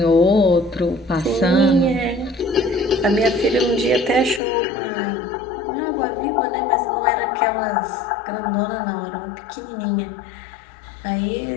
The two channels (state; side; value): drops out; right; at 4.4 s